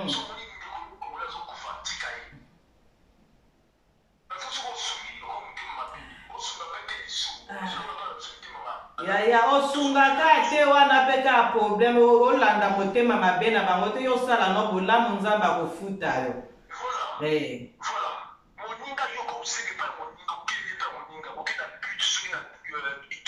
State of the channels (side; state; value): both; identical; correlation 1.00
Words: yaya osungaka te wana mpe kaka problème olanda motema mabe na bango te yosala no bolamu nzambe akofuta yo moninga yo kosenge mpa moninga okeli mpa moninga okenda but soki na